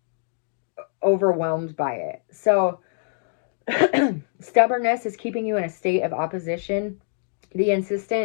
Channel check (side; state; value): right; silent; digital silence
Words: overwhelmed by it. So stubbornness is keeping you in a state of opposition. The